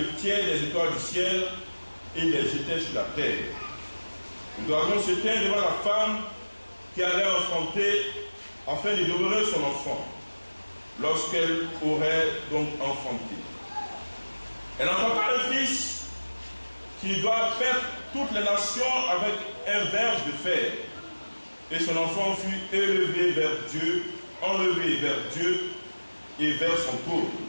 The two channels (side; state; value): both; inverted; correlation -1.00